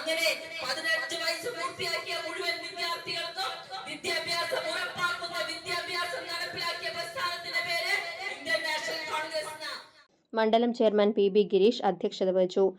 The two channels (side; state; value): both; identical; correlation 1.00